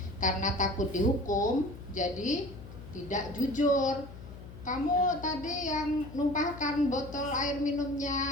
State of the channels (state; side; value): noise; left; hum, 14 dB below the sound